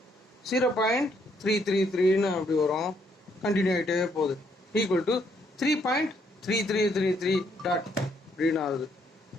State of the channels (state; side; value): normal; both; correlation 0.71